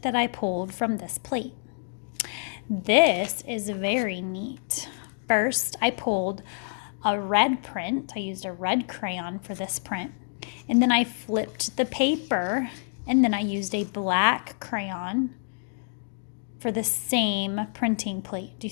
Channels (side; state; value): right; silent; digital silence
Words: that I pulled from this plate. This is very neat. First, I pulled a red print. I used a red crayon for this print. And then I flipped the paper, and then I used a black crayon for the same printing plate. Do